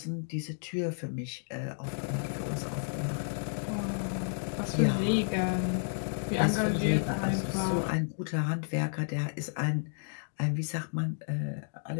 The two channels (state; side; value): silent; right; digital silence